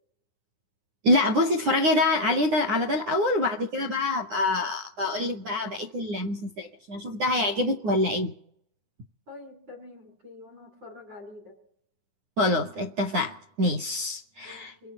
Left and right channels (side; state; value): left; late; 9.9 ms